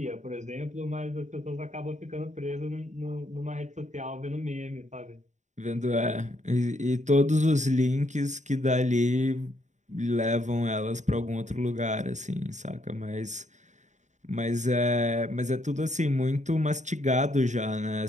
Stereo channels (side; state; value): left; late; 0.35 ms